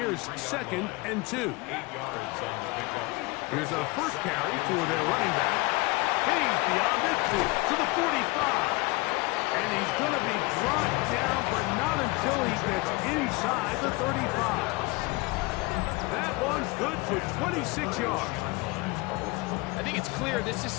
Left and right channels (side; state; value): right; quieter; 24.6 dB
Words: 2nd and 2. Here's a first carry for their running back. He's beyond it to the 45. And he's going to be brought down, but not until he gets inside the 35. That one's good for 26 yards. I think it's clear this is